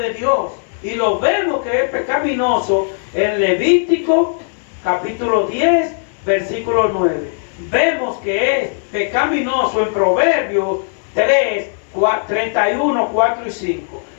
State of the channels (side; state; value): right; silent; 66 dB below the other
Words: Dios. Y lo vemos que es pecaminoso en Levítico capítulo 10 versículo 9. Vemos que es pecaminoso en Proverbios 3, 31, 4 y 5.